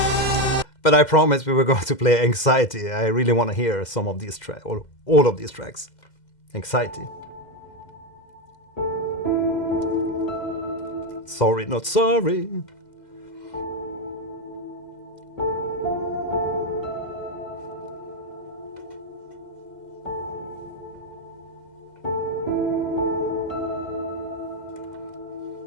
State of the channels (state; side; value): late; right; 2.0 ms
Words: But I promised we were going to play Anxiety. I really want to hear some of these tracks, or all of these tracks. Anxiety. Sorry, not sorry.